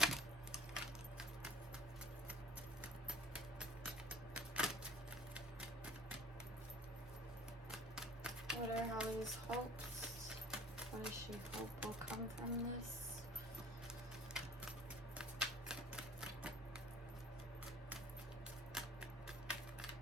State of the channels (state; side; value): normal; both; correlation 0.49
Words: What are Holly's hopes? What does she hope will come from this?